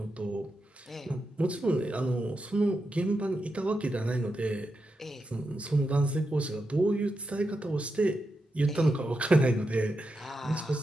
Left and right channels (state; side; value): normal; both; correlation 0.87